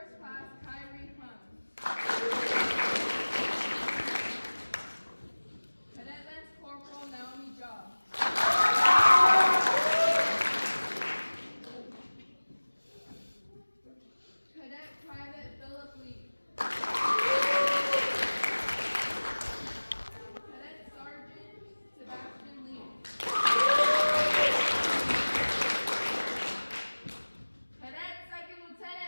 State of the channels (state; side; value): inverted; both; correlation -1.00